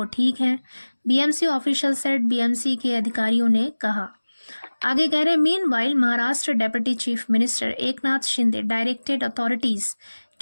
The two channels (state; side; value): inverted; both; correlation -1.00